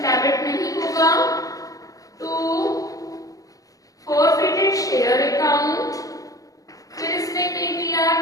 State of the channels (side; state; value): right; late; 0.17 ms